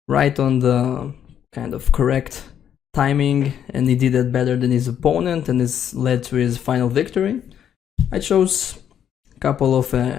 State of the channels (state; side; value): quieter; right; 9.3 dB